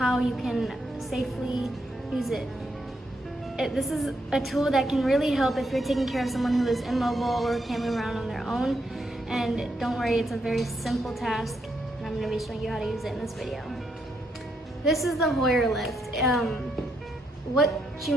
you can safely use it. This is a tool that can really help if you're taking care of someone who is immobile or can't move around on their own. And don't worry, it's a very simple task and I'm going to be showing you how to use it in this video. This is the Hoyer lift. What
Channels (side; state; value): both; normal; correlation 0.78